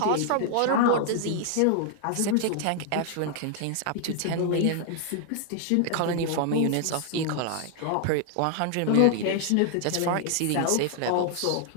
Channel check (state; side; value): different; both; correlation 0.00